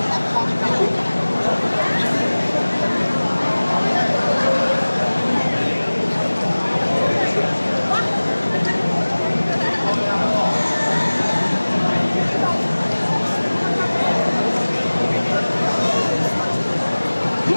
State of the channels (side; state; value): both; inverted; correlation -1.00